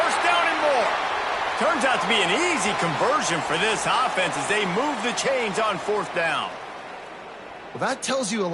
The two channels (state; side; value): identical; both; correlation 1.00